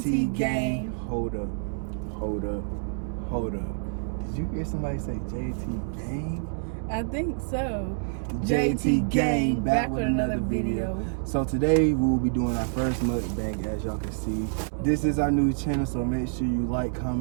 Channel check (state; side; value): silent; left; digital silence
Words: Gang. Hold up. Did you hear somebody say JT Gang? I think so. JT Gang, back with another video. So today we will be doing our first mukbang, as y'all can see. This is our new channel, so make sure you like,